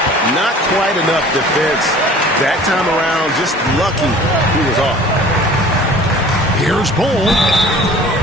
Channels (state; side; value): normal; both; correlation 0.46